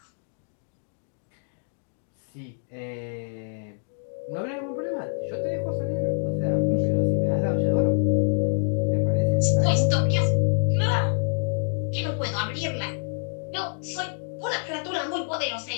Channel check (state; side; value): silent; right; digital silence